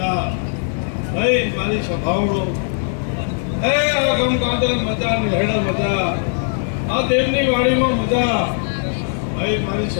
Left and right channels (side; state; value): right; silent; digital silence